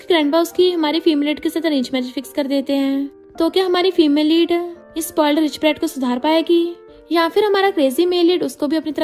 ग्रैंडपा उसकी हमारी फीमेल लीड के साथ अरेंज मैरिज फिक्स कर देते हैं। तो क्या हमारी फीमेल लीड इस स्पॉइल्ड रिच ब्रैट को सुधार पाएगी या फिर हमारा क्रेजी मेल लीड उसको भी अपनी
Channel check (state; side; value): identical; both; correlation 1.00